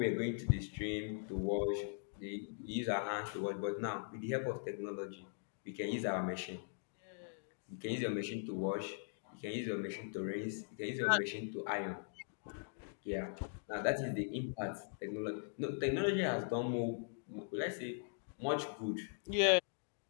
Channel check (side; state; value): right; silent; digital silence